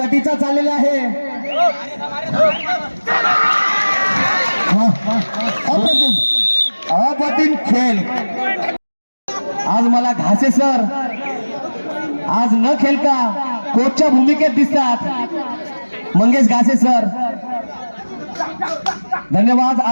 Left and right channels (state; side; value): inverted; both; correlation -1.00